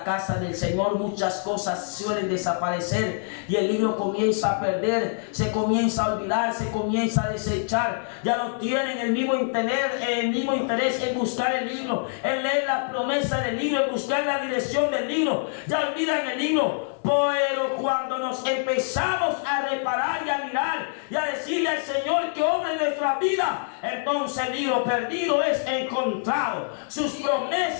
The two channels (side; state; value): right; silent; digital silence